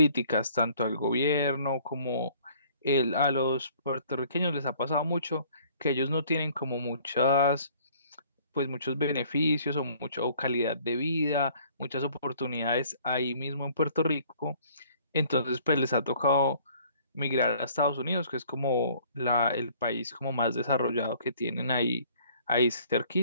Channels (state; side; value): inverted; both; correlation -0.56